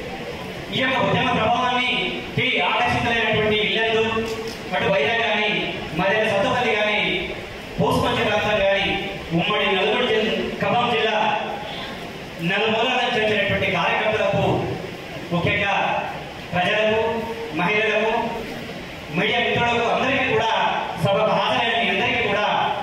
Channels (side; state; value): both; identical; correlation 1.00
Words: ఈ యొక్క ఉద్యమ ప్రభావాన్ని ఆకర్షితులైనటువంటి ఇళ్లలు అటు వైరా కానీ మధ్య సత్తుపల్లి కానీ పూసుపంచ ప్రాంతం కానీ ఉమ్మడి నల్గొండ ఖమ్మం జిల్లా నలుమూలల నుంచి వచ్చినటువంటి కార్యకర్తలకు ముఖ్యంగా ప్రజలకు మహిళలకు మీడియా మిత్రులకు అందరికీ కూడా సభకు హాజరైన మీ అందరికీ కూడా